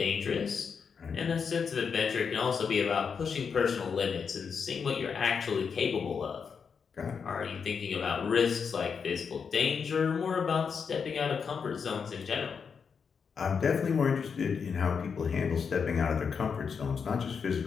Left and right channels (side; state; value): right; quieter; 6.1 dB